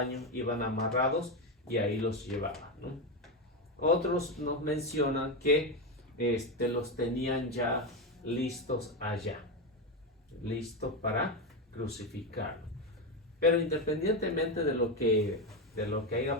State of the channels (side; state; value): both; normal; correlation 0.11